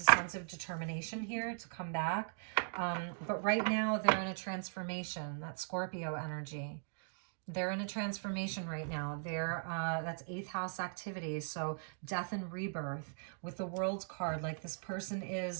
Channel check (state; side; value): silent; left; digital silence